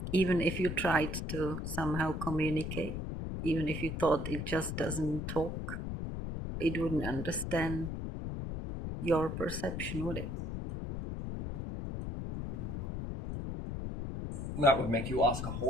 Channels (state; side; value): noise; left; rumble, 4 dB below the sound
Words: Even if you tried to somehow communicate, even if you thought it just doesn't talk, it wouldn't understand your perception, would it? That would make you ask a